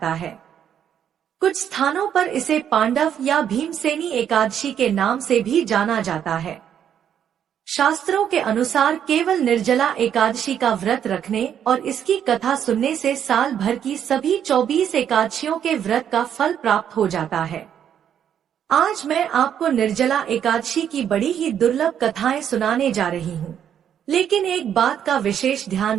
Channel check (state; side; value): quieter; left; 9.2 dB